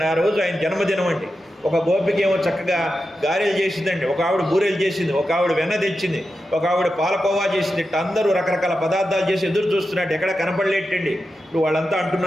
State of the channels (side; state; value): both; normal; correlation 0.90